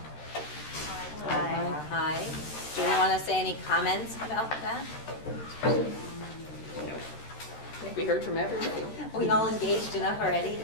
High. High. Do we want to say any comments about that? think we heard from everybody. Are we all engaged enough already?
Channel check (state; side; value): late; right; 13 ms